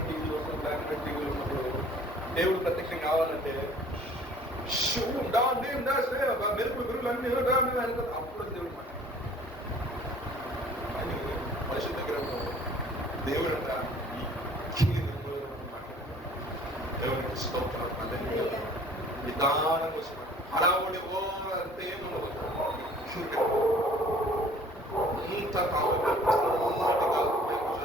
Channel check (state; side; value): normal; both; correlation 0.52